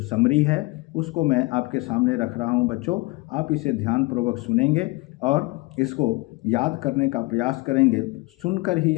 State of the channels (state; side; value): quieter; right; 23.6 dB